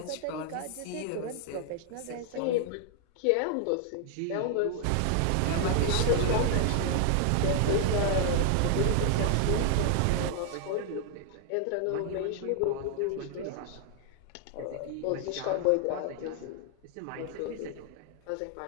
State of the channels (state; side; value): different; both; correlation 0.00